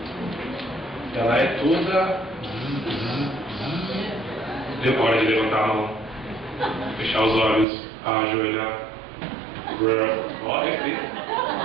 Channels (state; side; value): drops out; left; at 7.7 s